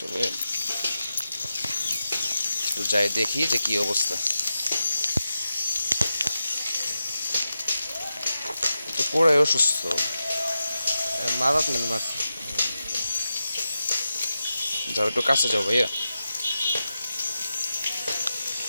তবে একটু যাই দেখি যে কি অবস্থা। তো পুরাই অসুস্থ। মাদাত মানে মারছে। যাও একটু কাছে যাও ভাইয়া।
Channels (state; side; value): inverted; both; correlation -0.90